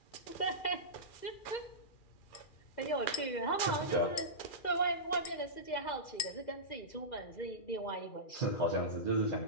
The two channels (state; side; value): late; right; 2.4 ms